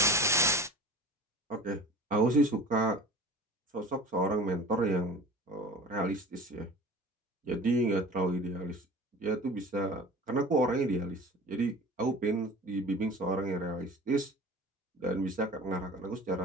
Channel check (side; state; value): both; normal; correlation 0.39